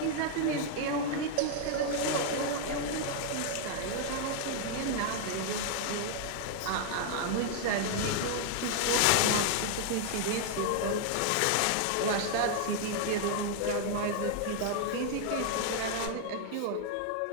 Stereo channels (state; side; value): different; both; correlation 0.00